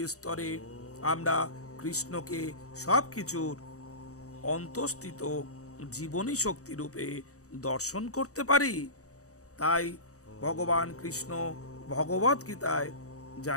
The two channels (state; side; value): late; right; 0.65 ms